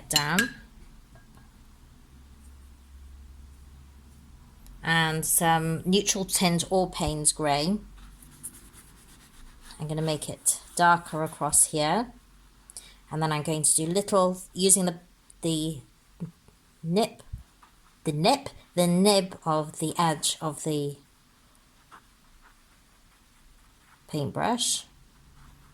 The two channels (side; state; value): both; identical; correlation 1.00